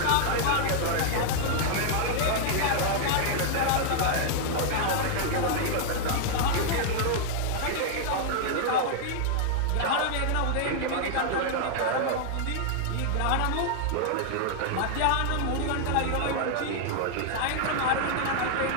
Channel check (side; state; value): both; different; correlation -0.01